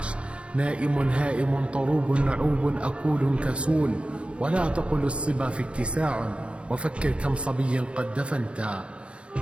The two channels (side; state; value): left; late; 0.059 ms